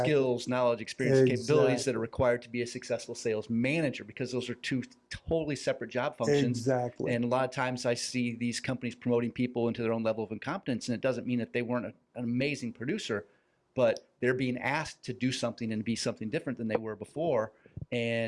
knowledge, experience, capabilities that are required to be a successful sales manager, because those are two totally separate job functions. Exactly. And a lot of times I see these companies promoting people into their own level of incompetence, and it doesn't mean that they weren't an amazing producer, but they're being asked to do something and be something different than they were before,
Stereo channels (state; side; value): identical; both; correlation 1.00